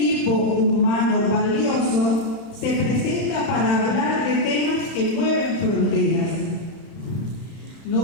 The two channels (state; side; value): late; right; 32 ms